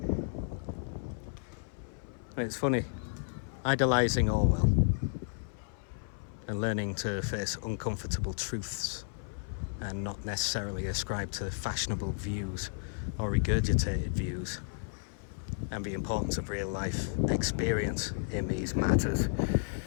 And it's funny, idolizing Orwell and learning to face uncomfortable truths and not necessarily ascribe to fashionable views or regurgitated views, and the importance of real life experience in these matters.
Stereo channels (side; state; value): right; silent; 56 dB below the other